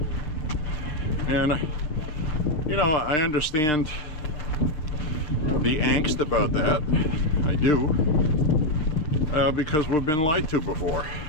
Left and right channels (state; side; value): late; right; 6.6 ms